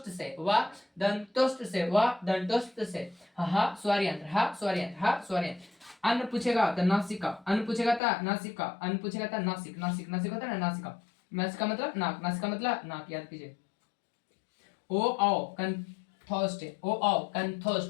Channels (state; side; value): drops out; right; at 8.0 s